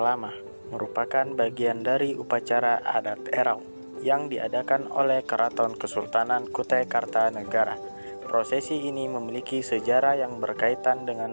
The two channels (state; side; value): inverted; both; correlation -1.00